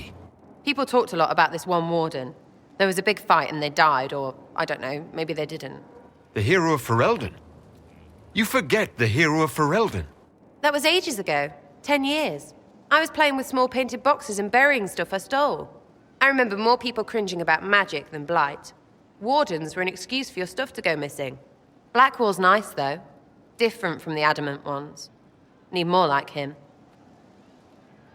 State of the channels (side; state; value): both; identical; correlation 1.00